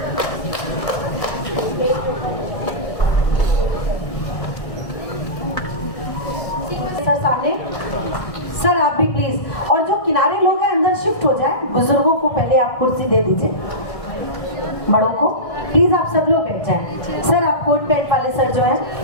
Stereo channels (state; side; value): late; right; 1.6 ms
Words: सर सामने, सर आप भी प्लीज, और जो किनारे लोग हैं अंदर शिफ्ट हो जाए। बुजुर्गों को पहले आप कुर्सी दे दीजिए, बड़ों को प्लीज आप सब लोग बैठ जाएं। सर आप कोट पैंट वाले सर जो हैं